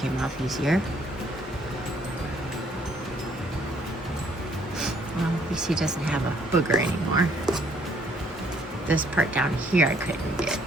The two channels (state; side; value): normal; both; correlation 0.65